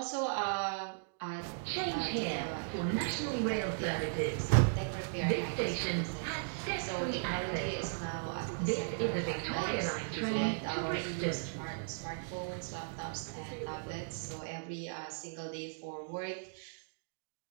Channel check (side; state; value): left; silent; digital silence